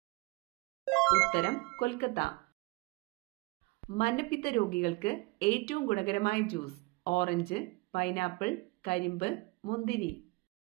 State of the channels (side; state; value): left; quieter; 24.8 dB